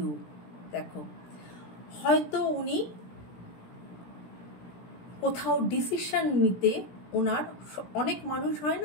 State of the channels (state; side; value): late; right; 17 ms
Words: দেখো হয়তো উনি কোথাও ডিসিশন নিতে ওনার, অনেক মানুষ হয়